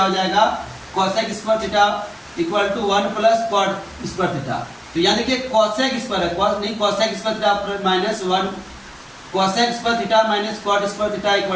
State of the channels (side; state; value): both; identical; correlation 1.00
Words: हो जाएगा, cosec square theta equal to 1 plus cot square theta. तो यहाँ देखिए cosec स्क्वायर है, cosec square theta minus 1, cosec square theta minus cot square theta